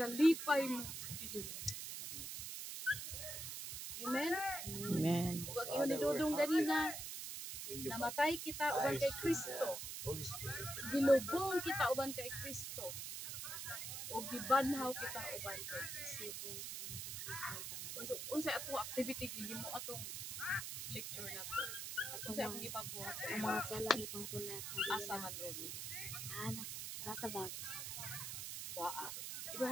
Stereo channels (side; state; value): right; noise; hiss, 5 dB below the sound